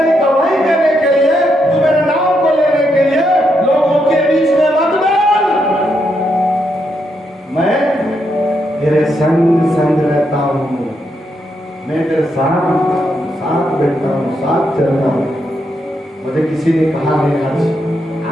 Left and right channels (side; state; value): both; normal; correlation 0.80